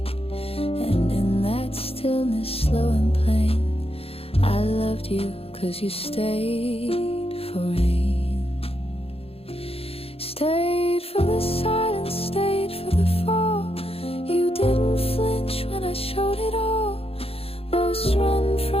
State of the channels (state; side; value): late; right; 0.28 ms